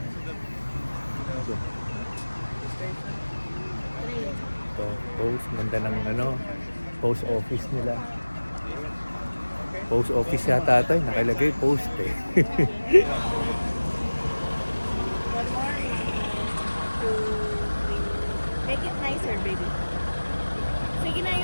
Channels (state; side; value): inverted; both; correlation -1.00